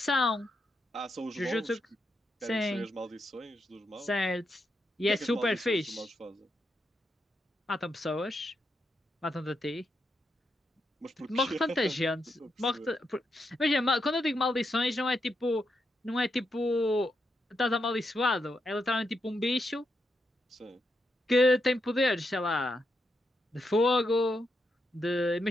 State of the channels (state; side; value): normal; both; correlation 0.83